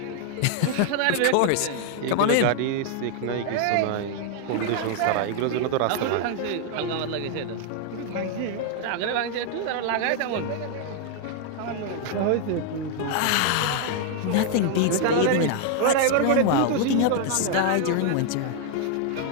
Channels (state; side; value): different; both; correlation 0.00